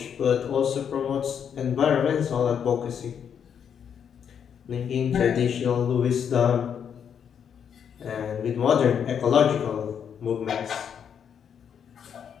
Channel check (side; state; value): right; quieter; 7.9 dB